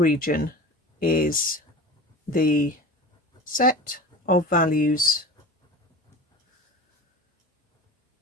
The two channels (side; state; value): both; normal; correlation 0.36